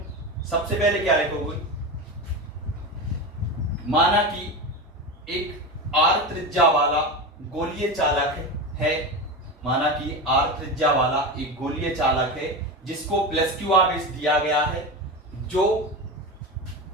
सबसे पहले क्या लिखोगे? माना कि एक आर त्रिज्या वाला गोलीय चालक है। माना कि आर त्रिज्या वाला एक गोलीय चालक है जिसको प्लस क्यू आवेश दिया गया है, जो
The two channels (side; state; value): both; normal; correlation 0.22